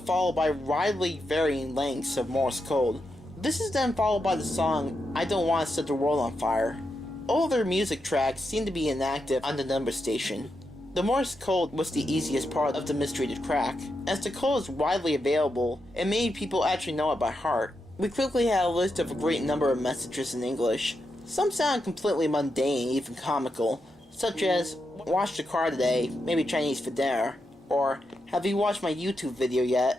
by widely varying lengths of Morse code. This is then followed by the song I Don't Want to Set the World on Fire. All their music tracks seem to be inactive on the number station. The Morse code was the easiest part of the mystery to crack, as the code is widely available and many people actually know it by heart. We quickly had a list of a great number of messages in English. Some sound completely mundane, even comical, such as, "Washed the car today, maybe Chinese for dinner," or, "Have you watched my YouTube video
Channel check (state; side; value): normal; both; correlation 0.85